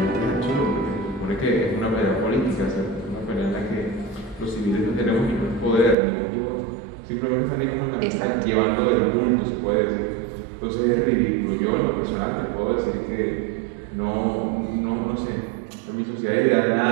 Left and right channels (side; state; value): left; drops out; at 6.0 s